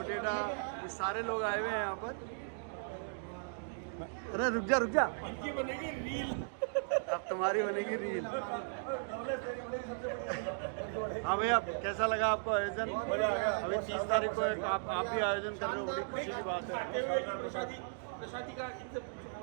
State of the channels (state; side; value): silent; left; digital silence